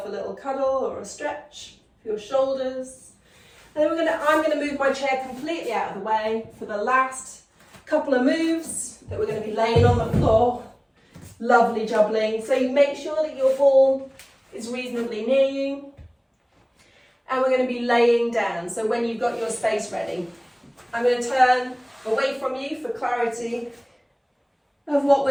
a little cuddle or a stretch for your shoulders. And then I'm going to move my chair completely out of the way for the last couple of moves that we're going to be laying on the floor. Lovely jubbling. So you make sure that your ball is reasonably near you, and we're going to be laying down. So when you've got your space ready, I'm going to turn away from you for clarity of what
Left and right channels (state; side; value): identical; both; correlation 1.00